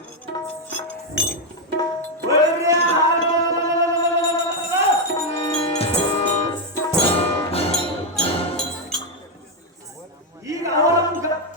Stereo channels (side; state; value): both; normal; correlation 0.03